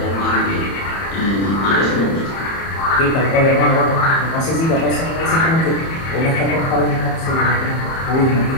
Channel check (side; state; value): right; late; 31 ms